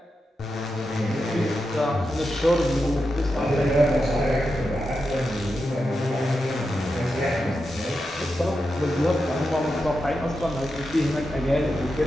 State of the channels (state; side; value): normal; both; correlation 0.88